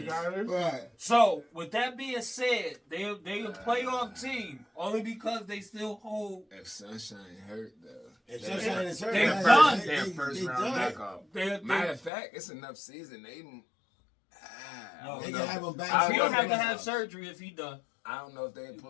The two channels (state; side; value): drops out; right; at 12.1 s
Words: Right. So with that being said, they a playoff team only because they still hold. If Sunshine hurt though. If Sunshine is hurt, They're man, done. they- Their they- first they round done. back off. They Matter of fact, it's enough season. They They can have him back. I He don't have to know. have surgery if he done. I don't know if they